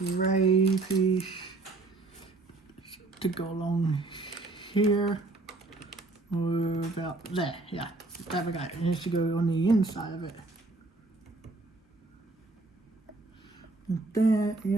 piece to go along here. Or about there, yeah. There we go. It has to go on the inside of it. Like that,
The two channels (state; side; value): quieter; left; 3.2 dB